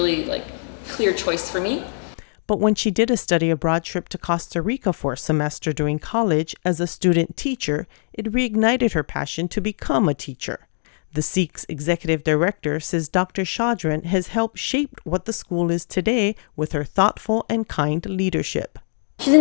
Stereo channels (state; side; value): silent; right; digital silence